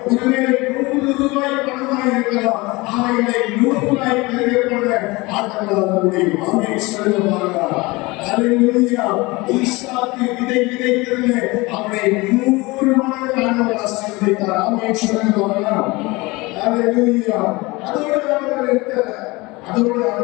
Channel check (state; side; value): quieter; right; 23.2 dB